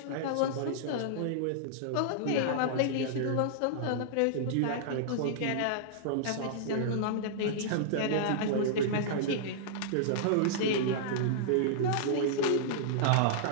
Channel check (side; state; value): both; different; correlation -0.01